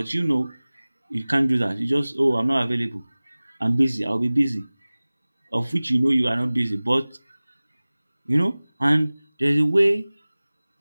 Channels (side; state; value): both; inverted; correlation -0.99